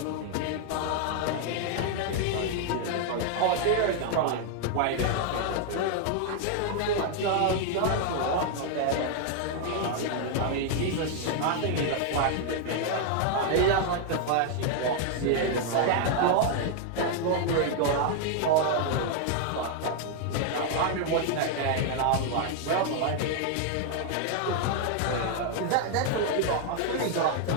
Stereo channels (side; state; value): both; different; correlation 0.00